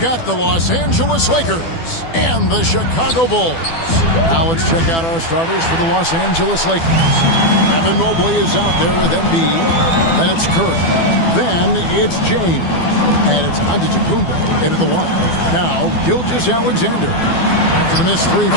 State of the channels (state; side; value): late; right; 12 ms